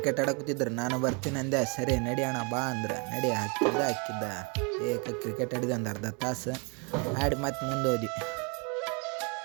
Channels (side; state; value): left; quieter; 33.0 dB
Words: ಆಡಕೂತಿದ್ರು, ನಾನು ಬರ್ತೀನಿ ಅಂದೆ. ಸರಿ ನಡಿ ಅಣ್ಣ ಬಾ ಅಂದ್ರೆ ನಡಿ ಹಾಕಿದ್ದ ಏಕ ಕ್ರಿಕೆಟ್ ಆಡಿದೆ ಒಂದು ಅರ್ಧ ತಾಸು ಆಡಿ ಮತ್ತೆ ಮುಂದೆ ಹೋದ್ವಿ.